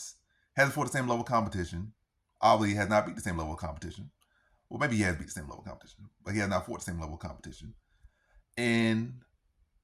Hasn't fought the same level of competition. Obviously, has not beat the same level of competition. Well, maybe he has beat the same level of competition, but he has not fought the same level of competition. And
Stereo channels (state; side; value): identical; both; correlation 1.00